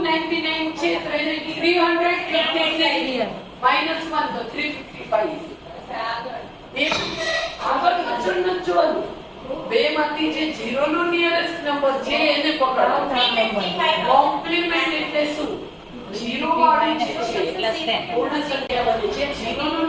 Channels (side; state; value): both; identical; correlation 1.00